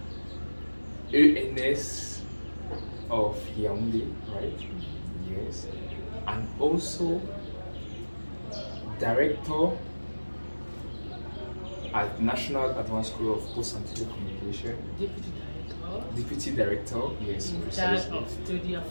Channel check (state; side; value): inverted; both; correlation -1.00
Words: ENS of Yaoundé, right? Yes. And also director at National Advanced School of Post and Telecommunication. Deputy director, yes, In charge precisely. of study